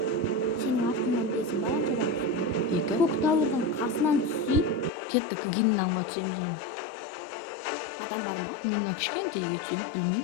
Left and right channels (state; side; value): drops out; right; at 4.9 s